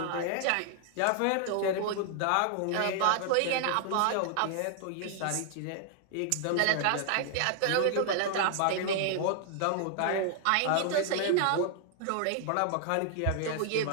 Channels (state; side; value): different; both; correlation 0.00